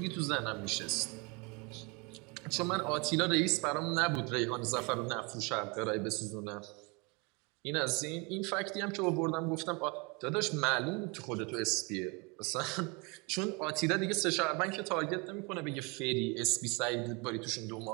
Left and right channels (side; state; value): left; quieter; 29.9 dB